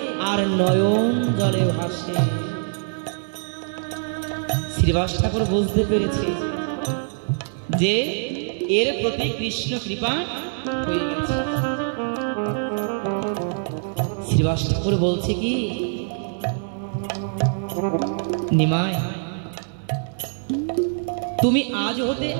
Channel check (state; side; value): silent; left; digital silence